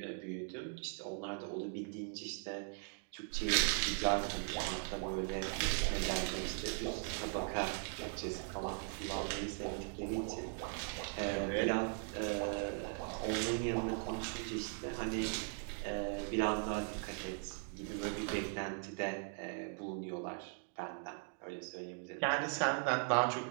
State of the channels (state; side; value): silent; left; 51 dB below the other